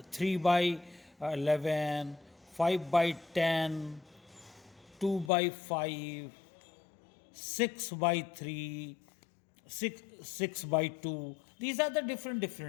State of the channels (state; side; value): drops out; right; at 5.3 s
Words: 3 by 11, 5 by 10, 2 by 5, 6 by 3, 6 by 2. These are the